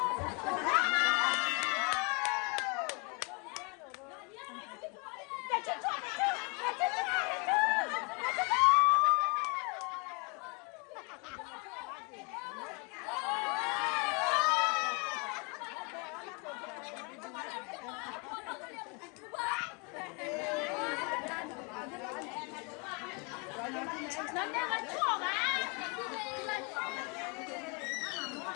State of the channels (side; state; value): right; quieter; 32.4 dB